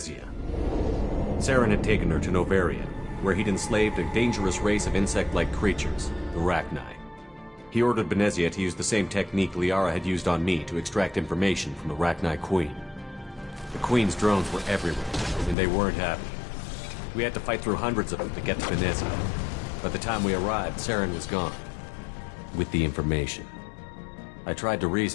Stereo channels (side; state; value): right; drops out; at 15.6 s